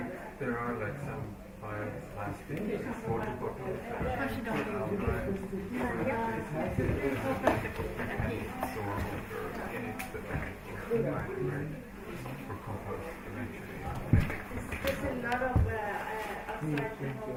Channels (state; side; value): identical; both; correlation 1.00